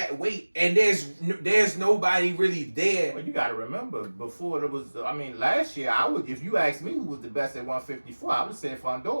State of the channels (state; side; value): inverted; both; correlation -1.00